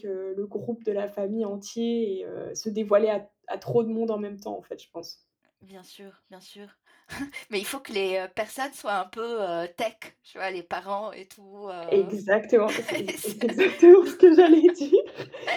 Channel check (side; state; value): both; identical; correlation 1.00